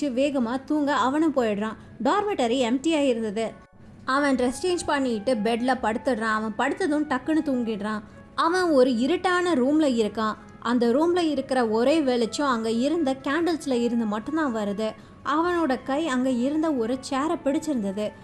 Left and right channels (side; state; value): both; identical; correlation 1.00